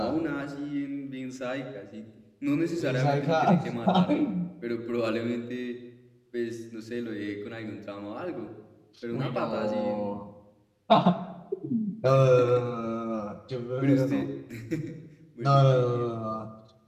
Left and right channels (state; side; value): identical; both; correlation 1.00